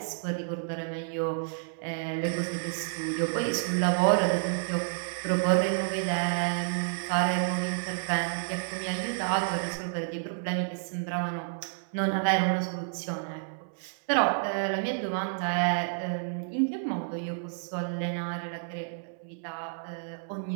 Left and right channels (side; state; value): left; silent; 58 dB below the other